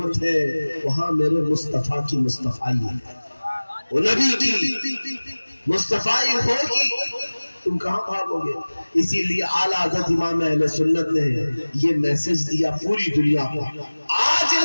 ہے وہاں میرے مصطفیٰ کی مصطفائی ہے، وہ نبی کی مصطفیٰ ہوگی، تم کہاں بھاگو گے؟ اسی لیے اعلیٰ حضرت امام اہل سنت نے یہ میسج دیا پوری دنیا کو، آج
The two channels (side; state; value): both; inverted; correlation -1.00